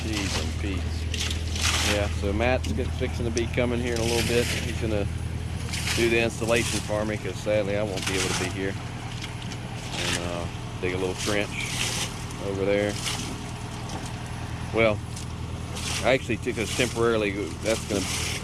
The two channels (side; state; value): both; identical; correlation 1.00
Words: I'm Yeah, so Matt's fixing to be coming here in a little bit. He's gonna do the installation for me because sadly I won't be able to be here. And dig a little trench over there. Well, I actually took us temporarily. That's gonna